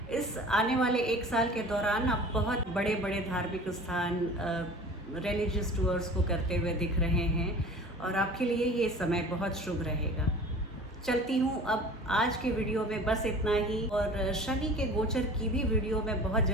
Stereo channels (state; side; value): normal; both; correlation 0.42